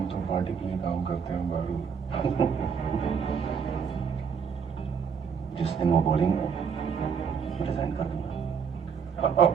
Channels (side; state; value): left; quieter; 6.6 dB